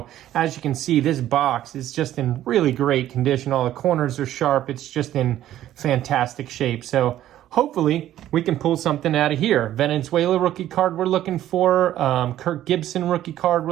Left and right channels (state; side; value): quieter; left; 12.8 dB